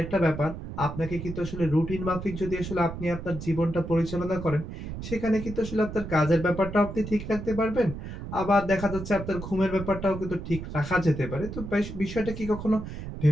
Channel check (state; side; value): noise; right; rumble, 9 dB below the sound